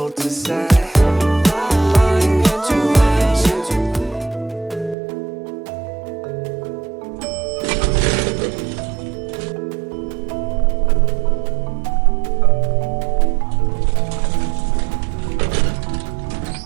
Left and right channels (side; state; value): left; drops out; at 5.0 s